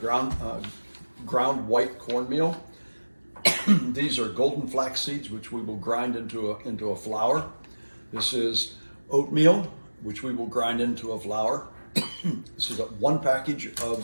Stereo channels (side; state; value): both; inverted; correlation -1.00